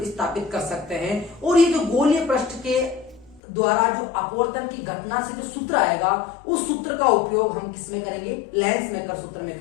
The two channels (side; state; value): right; drops out; at 3.4 s